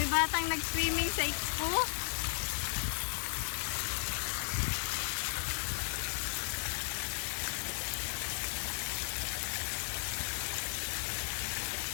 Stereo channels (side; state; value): right; silent; 54 dB below the other